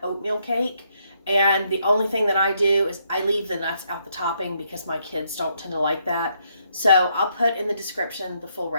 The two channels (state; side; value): inverted; both; correlation -0.74